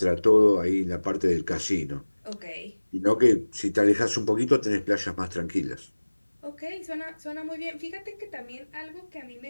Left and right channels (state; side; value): inverted; both; correlation -1.00